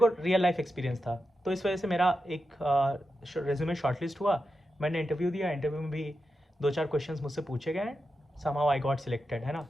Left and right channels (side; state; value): both; normal; correlation 0.89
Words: रियल लाइफ एक्सपीरियंस था, तो इस वजह से मेरा एक रेज्यूमे शॉर्टलिस्ट हुआ। मैंने इंटरव्यू दिया, इंटरव्यू में भी 2-4 क्वेश्चंस मुझसे पूछे गए, समहाउ आई गॉट सिलेक्टेड, है ना।